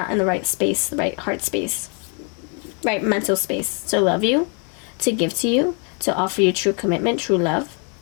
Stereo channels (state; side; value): quieter; right; 37.4 dB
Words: in the right space, the right heart space, right mental space to love you, to give to you, to offer you true commitment, true love.